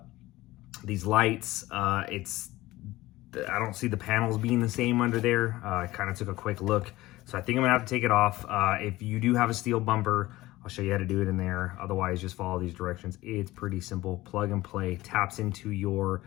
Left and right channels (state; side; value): quieter; right; 17.9 dB